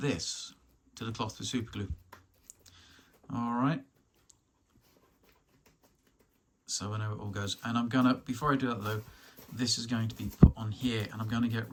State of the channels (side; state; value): both; identical; correlation 1.00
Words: to the cloth with super glue. All right. So I know it all goes. And I'm gonna, before I do that though, this is going to be put on here, and I'm going to get